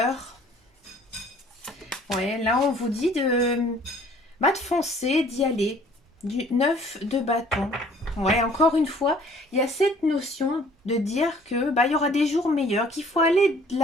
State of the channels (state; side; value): normal; both; correlation 0.55